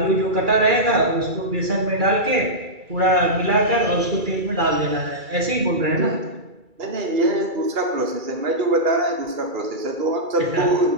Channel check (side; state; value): left; late; 2.3 ms